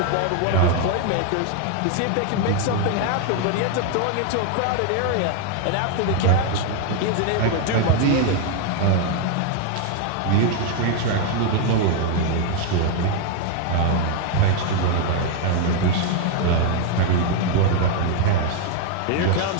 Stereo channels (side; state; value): both; different; correlation 0.01